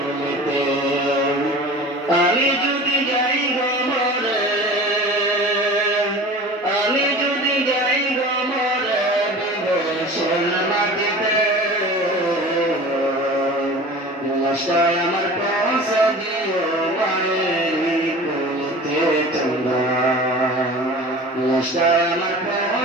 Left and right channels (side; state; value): both; normal; correlation 0.38